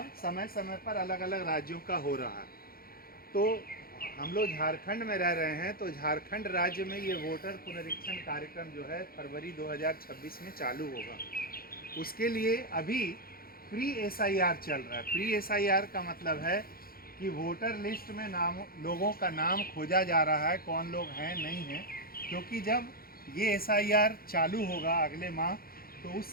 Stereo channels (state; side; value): late; right; 0.43 ms